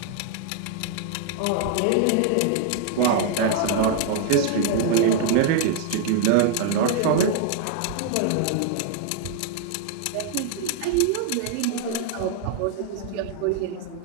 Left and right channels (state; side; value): different; both; correlation 0.00